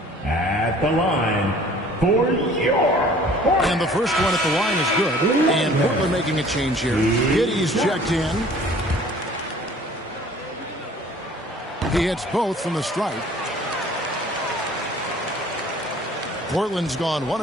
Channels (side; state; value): both; normal; correlation 0.51